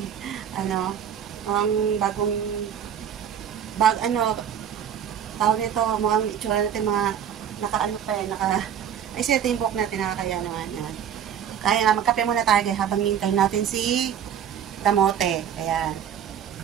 ang tawag nito, mukhang itsura natin mga ay siya yung buhok natin, nakakaya naman yan. Kaya magkape muna tayo habang hintay natin si kamote. Ayan.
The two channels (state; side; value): quieter; left; 9.0 dB